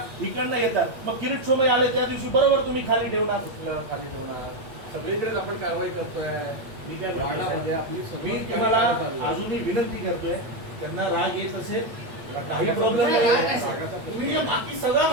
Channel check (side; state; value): left; late; 8.6 ms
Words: इकडनं येतात. मग किरीट सोमय्या आले त्या दिवशी बरोबर तुम्ही खाली ठेवणार. कुठलं खाली ठेवणार, सगळीकडेच आपण कारवाई करतोय. मी काय म्हणतो वार्डामध्ये साहेब, आपली सगळी मी कारवाई तुम्हाला चालू आहे. अजूनही विनंती करतोय, त्यांना राग येत असेल काही प्रॉब्लेम नाही, नाही, नाही. नाही. तुम्ही जे बाकी सगळं